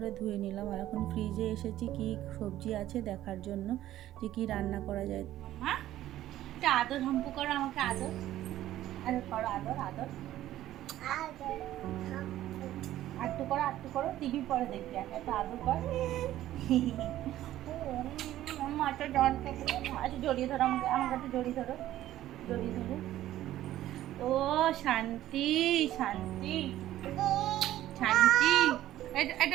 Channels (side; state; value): left; quieter; 13.7 dB